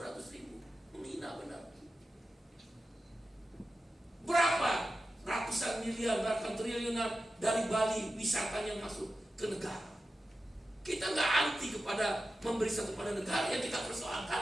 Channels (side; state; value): both; normal; correlation 0.93